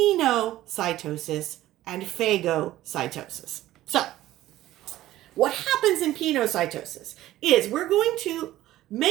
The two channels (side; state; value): left; quieter; 14.9 dB